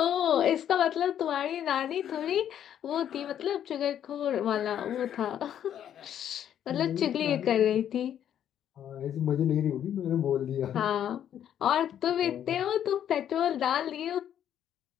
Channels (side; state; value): right; quieter; 10.0 dB